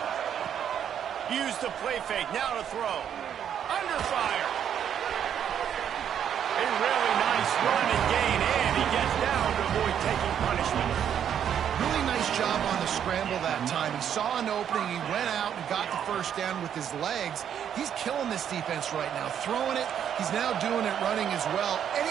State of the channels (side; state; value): left; quieter; 9.0 dB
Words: Use the play fake. Now to throw. Under fire. A really nice run and gain, and he gets down to avoid taking punishment. Really nice job on the scramble that time. He saw an opening. He went out and got the 1st down with his legs. He's killing this defense right now. Throwing it. He's now doing it running as well.